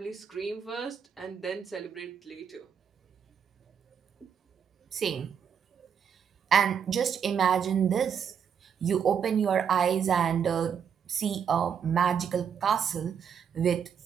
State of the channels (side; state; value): left; quieter; 7.5 dB